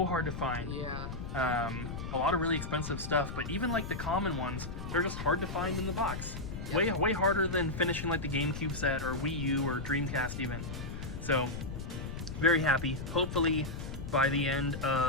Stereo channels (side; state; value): left; noise; rumble, 7 dB below the sound